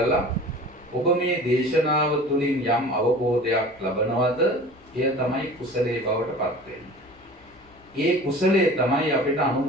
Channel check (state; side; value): normal; both; correlation 0.41